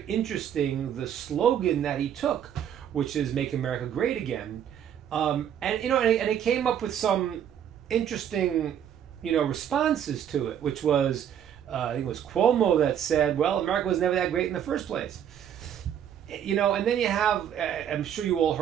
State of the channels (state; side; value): quieter; left; 9.4 dB